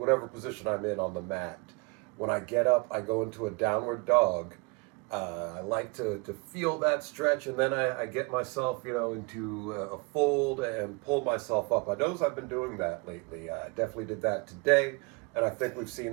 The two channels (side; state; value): left; quieter; 28.1 dB